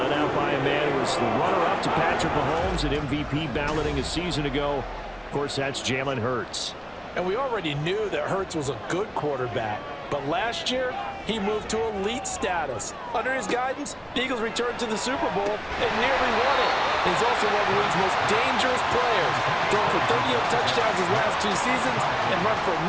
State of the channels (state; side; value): identical; both; correlation 1.00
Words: out by a man who was the runner-up to Patrick Mahomes at MVP balloting a season ago. Of course, that's Jalen Hurts. And we already knew that Hurts was a good quarterback. But last year, he moved to elite status. Under his guidance, the Eagles returned to the Super Bowl and nearly won it. He's also one of the league's most dangerous players, thrown for 38 touchdowns his last 2 seasons and run for